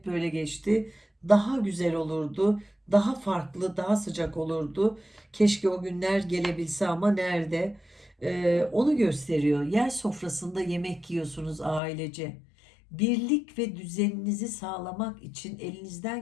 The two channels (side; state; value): right; drops out; at 11.8 s